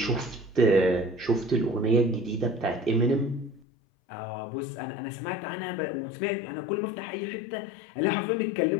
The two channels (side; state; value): right; drops out; at 3.7 s